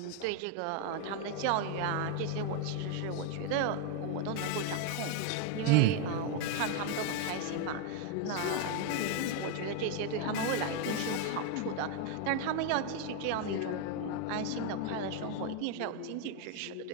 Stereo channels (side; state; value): both; different; correlation 0.01